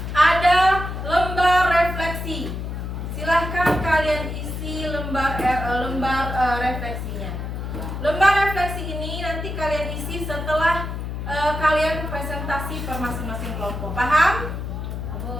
ada lembar refleksi. Silahkan kalian isi lembar refleksinya. Lembar refleksi ini nanti kalian isi setelah kalian presentasi per masing-masing kelompok. Paham?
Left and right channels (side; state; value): left; noise; hum, 5 dB below the sound